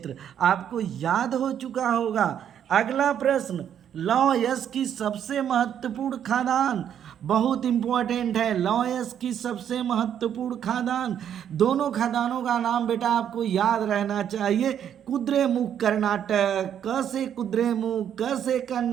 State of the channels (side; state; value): left; quieter; 9.3 dB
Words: आपको याद हो चुका होगा। अगला प्रश्न, लौह यस्क की सबसे महत्वपूर्ण खादान, बहुत इंपॉर्टेंट है, लौह यस्क की सबसे महत्वपूर्ण खादान, दोनों खादानों का नाम बेटा आपको याद रहना चाहिए। कुद्रेमुख कर्नाटक, क से कुद्रेमुख, क से